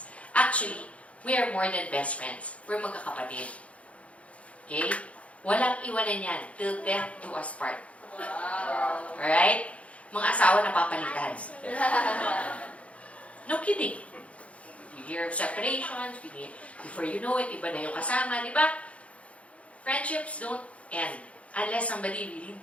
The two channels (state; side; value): late; right; 0.064 ms